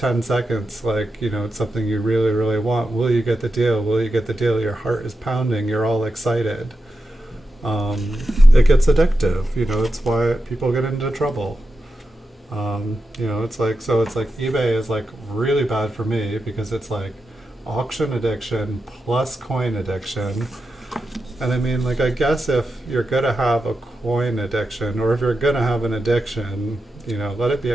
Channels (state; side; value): normal; both; correlation 0.89